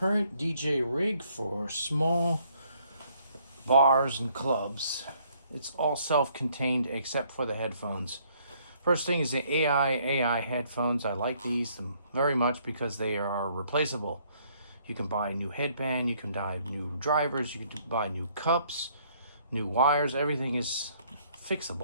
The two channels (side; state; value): both; inverted; correlation -0.65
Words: DJ rig for small bars and clubs. It's all self-contained except for the headphones. First thing is the AIAIAI Headphones. I like these very much because they are replaceable. You can buy a new headband, you can buy new drivers, you can buy new cups, new wires. Everything is